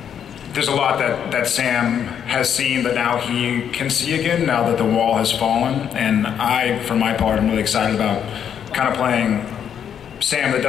there's a lot that Sam has seen that now he can see again, now that the wall has fallen. And I, for my part, am really excited about kind of playing Sam that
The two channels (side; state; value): right; quieter; 8.6 dB